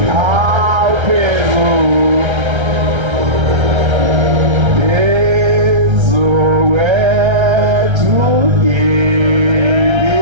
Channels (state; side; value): late; left; 1.3 ms